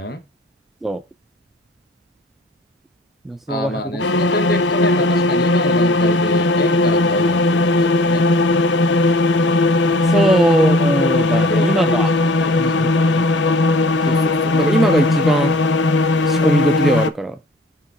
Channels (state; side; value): normal; both; correlation 0.49